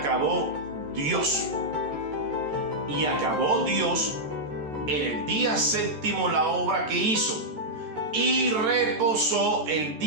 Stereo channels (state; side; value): late; left; 13 ms